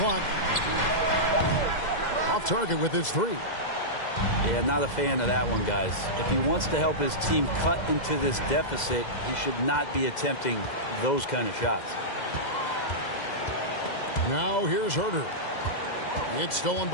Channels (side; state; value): right; late; 2.0 ms